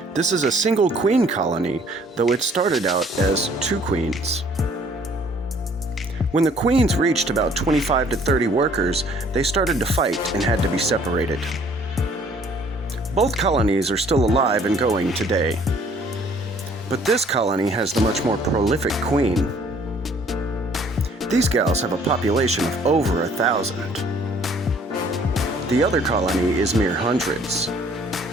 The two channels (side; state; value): both; normal; correlation 0.58